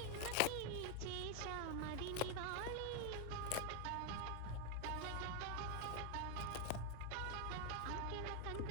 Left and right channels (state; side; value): different; both; correlation 0.01